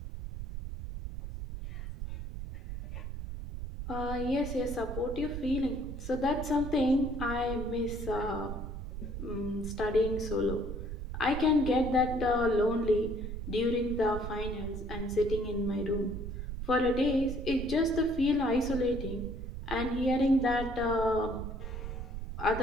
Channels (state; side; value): noise; right; rumble, 6 dB below the sound